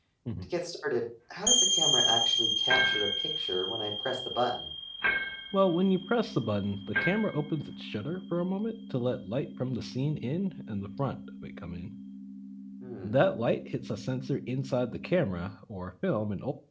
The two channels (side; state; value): both; identical; correlation 1.00